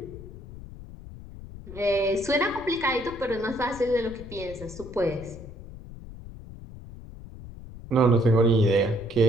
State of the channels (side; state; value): left; noise; rumble, 14 dB below the sound